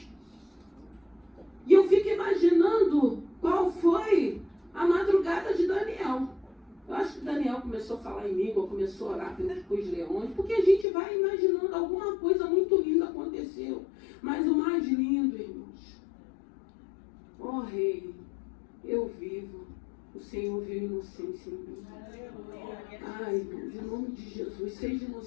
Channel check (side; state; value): right; drops out; at 10.9 s